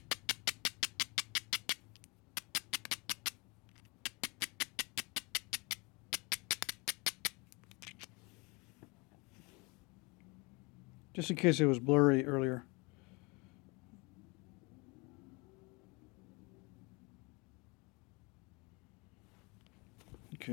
just in case it was blurry earlier.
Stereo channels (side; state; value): right; quieter; 28.1 dB